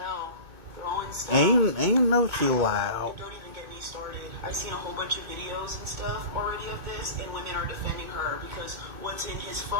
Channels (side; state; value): left; late; 2.2 ms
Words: Throwing stuff. Ain't no she loud. Don't even get me started. I've seen a whole bunch of videos and stuff already of this, and women are defending her because what's in his